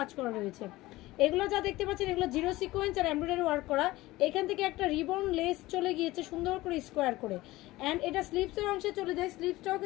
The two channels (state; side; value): quieter; right; 18.5 dB